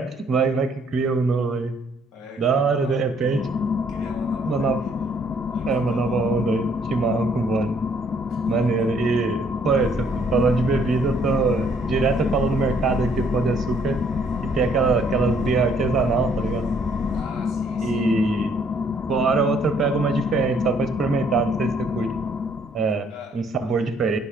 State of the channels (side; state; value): both; normal; correlation 0.65